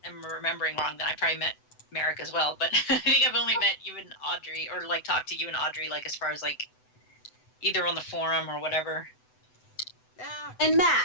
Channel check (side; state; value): right; late; 7.9 ms